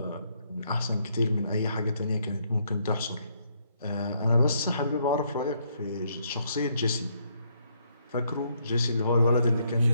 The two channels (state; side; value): inverted; both; correlation -0.72